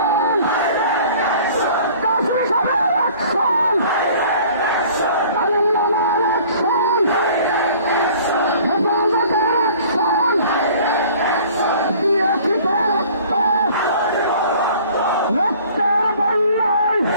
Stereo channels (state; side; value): inverted; both; correlation -0.50